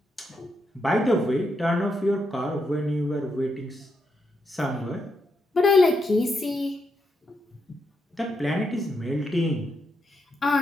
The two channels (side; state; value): both; normal; correlation 0.81